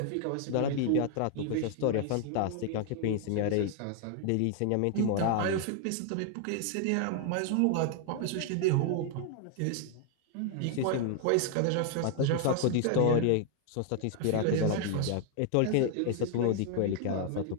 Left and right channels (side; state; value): both; different; correlation 0.00